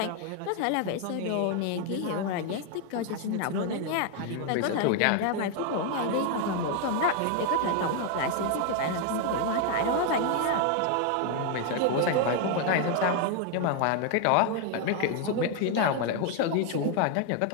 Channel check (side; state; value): both; different; correlation 0.00